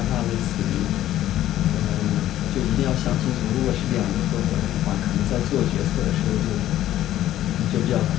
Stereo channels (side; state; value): right; quieter; 13.1 dB